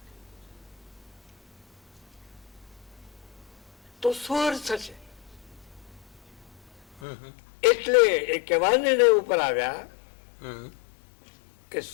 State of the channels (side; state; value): right; drops out; at 7.0 s